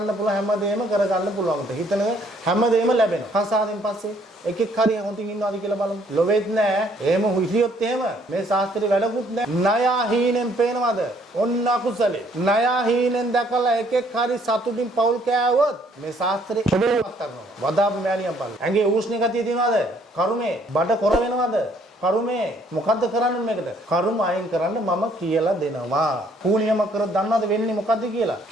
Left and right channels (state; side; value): normal; both; correlation 0.64